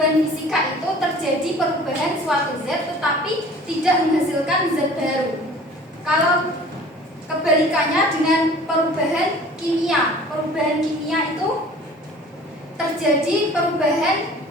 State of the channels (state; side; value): normal; both; correlation 0.47